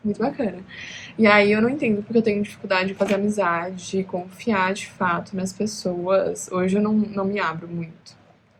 muito bacana. E aí eu não entendo porque eu tenho dificuldade de fazer amizade, de confiar de fato nas pessoas. Hoje eu não me abro muito.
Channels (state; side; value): identical; both; correlation 1.00